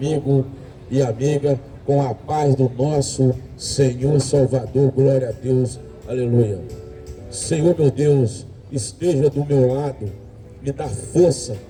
e amiga, com a paz do nosso Senhor Salvador, glória a Deus, aleluia. Senhor meu Deus, esteja do meu lado, me dá força,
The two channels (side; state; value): both; identical; correlation 1.00